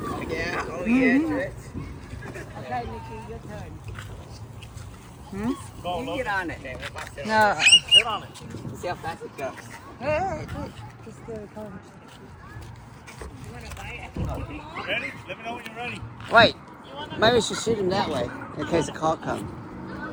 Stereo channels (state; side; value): identical; both; correlation 1.00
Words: Yeah, oh yeah, Trish. Okay, Nikki, your turn. Go, You look. get on it. No. Sit on it. See how fast it goes. Ready? Let me know when you're ready. Wait, maybe we should shoot him that way in case a call comes.